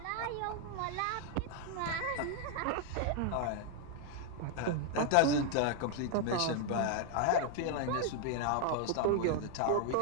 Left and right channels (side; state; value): both; different; correlation 0.00